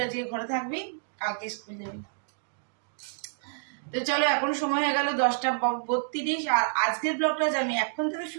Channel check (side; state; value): left; silent; digital silence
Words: আজকে ঘরে থাকবি, কালকে স্কুল যাবি। তো চলো, এখন সময় হয়ে গেল 10:32। আর আজকের ব্লগটা আমি এখন থেকে